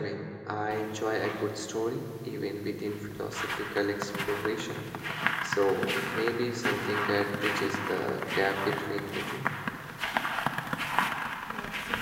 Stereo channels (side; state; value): both; identical; correlation 1.00